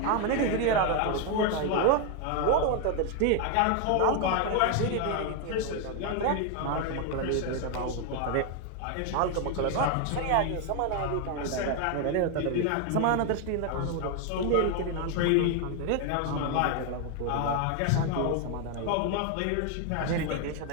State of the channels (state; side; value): different; both; correlation 0.01